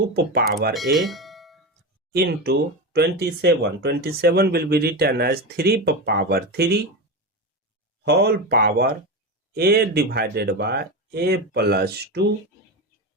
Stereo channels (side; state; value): both; normal; correlation 0.19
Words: power a into 27. 27 will be written as 3 power 3 whole power a divided by a plus 2